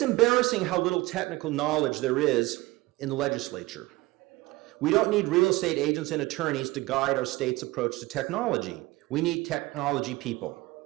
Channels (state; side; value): quieter; left; 20.3 dB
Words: embarrassing how little technical knowledge there is in the legislature. We don't need real estate agents and attorneys to guide our state's approach to technology. We need technology people.